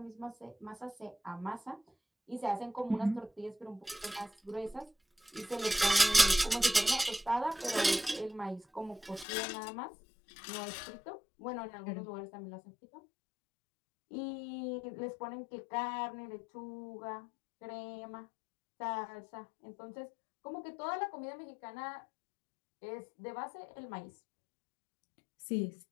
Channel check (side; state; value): right; drops out; at 9.2 s